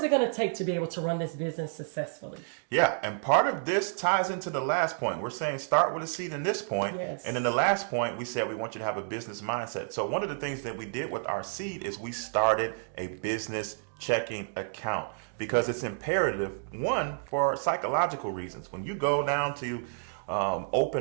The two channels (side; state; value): left; silent; digital silence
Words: it going to take to be able to run this business successfully. Yeah, and part of this ties into the last point. We're saying start with a seed in this point. Yes. And in the last point, we said we want you to have a business mindset. So one of the things that we did with our seed is we started a business checking account, because it's imperative, one, for psychological reasons. When you go down to